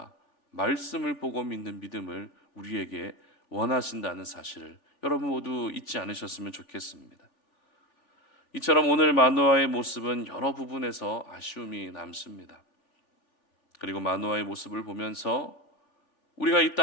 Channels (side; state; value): right; late; 3.4 ms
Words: 말씀을 보고 믿는 믿음을 우리에게 원하신다는 사실을 여러분 모두 잊지 않으셨으면 좋겠습니다. 이처럼 오늘 마노아의 모습은 여러 부분에서 아쉬움이 남습니다. 그리고 마노아의 모습을 보면서 우리가 이